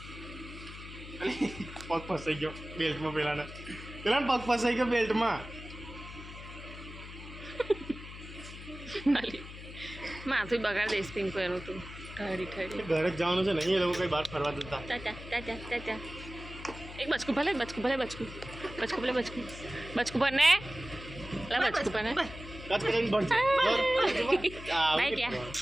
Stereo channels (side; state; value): left; noise; hum, 13 dB below the sound